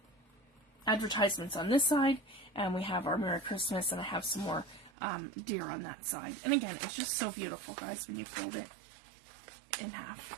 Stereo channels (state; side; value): drops out; left; at 4.9 s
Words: advertisements on this side, and we have our Merry Christmas, and I have some more deer on that side. And again, it's just so beautiful, guys, when you fold it in